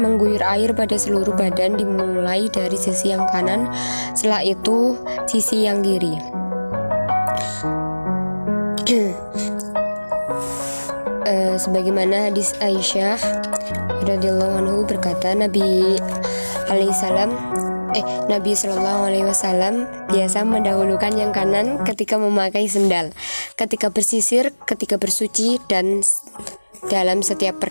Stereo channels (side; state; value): both; inverted; correlation -1.00